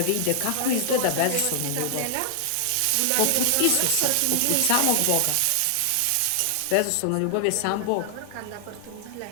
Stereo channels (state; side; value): different; both; correlation 0.00